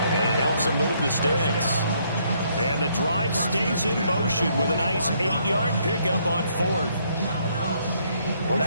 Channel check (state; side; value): inverted; both; correlation -0.70